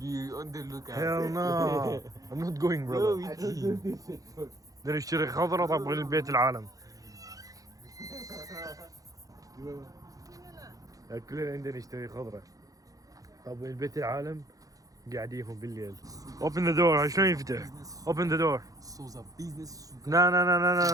be on the lookout. Hell no. I'm not going Go brother. with him. بدنا نشتري خضرة طب للبيت العالم. كلنا عندنا نشتري خضرة. طب البيت العالم قاعديهم بالليل. Open the door. شلون يفتح؟ Open the door. Souza business super.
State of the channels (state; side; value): late; left; 0.17 ms